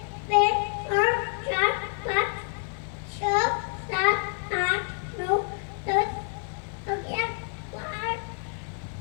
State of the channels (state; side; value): silent; right; 59 dB below the other